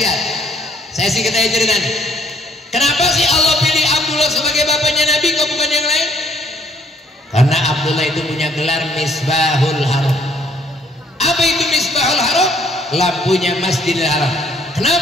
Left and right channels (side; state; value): both; normal; correlation 0.63